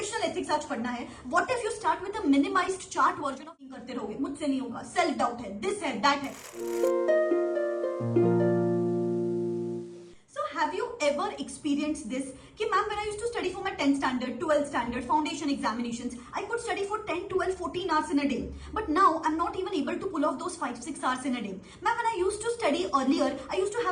एथिक्स आज पढ़ना है, what if you start with a minimised chart version of करते रहोगे? मुझसे नहीं होगा, सेल्फ डाउट है, दिस है, दैट है। Have you ever experienced this? कि ma'am when I used to study for my 10th standard, 12th standard, foundation examinations, I could study for 10, 12, 14 hours in a day. But now I'm not even able to pull off those 5, 6 hours in a day. Ma'am, when I used to study earlier, I used to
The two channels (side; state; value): both; identical; correlation 1.00